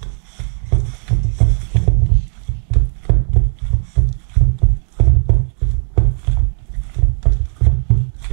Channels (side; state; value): left; silent; digital silence